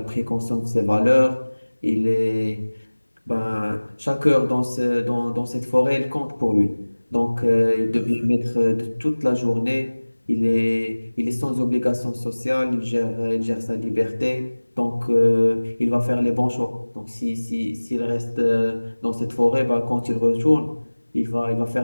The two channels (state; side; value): inverted; both; correlation -1.00